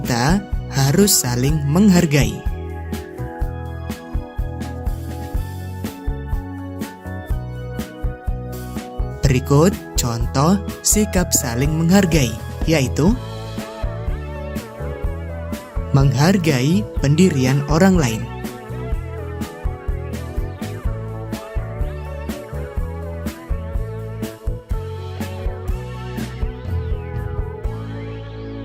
harus saling menghargai. Berikut contoh sikap saling menghargai, yaitu menghargai pendirian orang lain.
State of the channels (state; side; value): identical; both; correlation 1.00